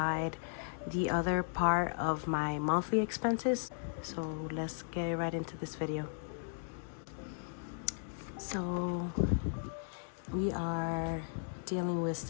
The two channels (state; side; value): silent; right; digital silence